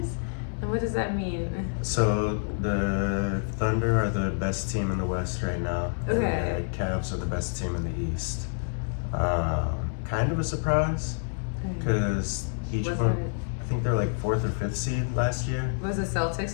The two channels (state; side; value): silent; right; 59 dB below the other